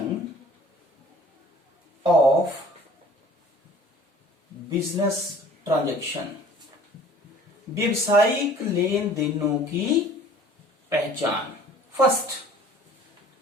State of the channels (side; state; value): both; normal; correlation 0.50